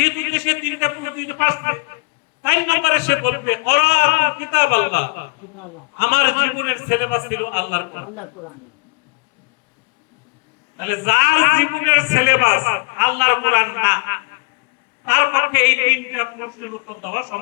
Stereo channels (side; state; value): right; quieter; 30.5 dB